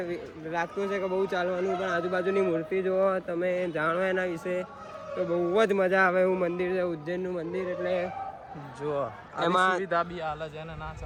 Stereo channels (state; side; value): identical; both; correlation 1.00